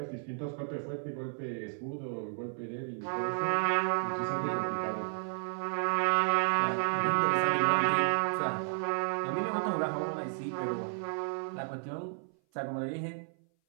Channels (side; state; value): left; silent; 56 dB below the other